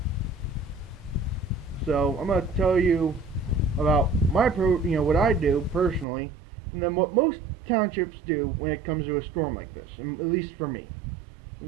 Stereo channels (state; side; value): drops out; left; at 6.1 s